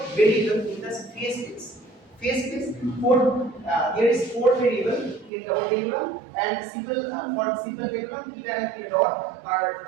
variables in the phase space. Phase space, there is 4 variables in double pendulum, and simple for simple pendulum, theta and theta dot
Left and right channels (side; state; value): left; drops out; at 5.3 s